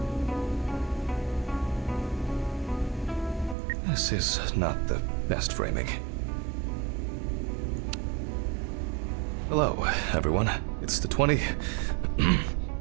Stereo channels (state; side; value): drops out; left; at 3.6 s